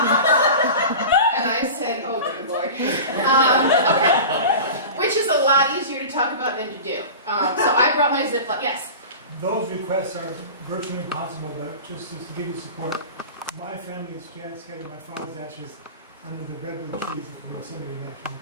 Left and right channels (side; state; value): both; inverted; correlation -0.33